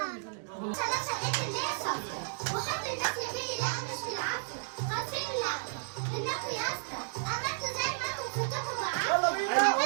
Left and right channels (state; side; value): silent; left; digital silence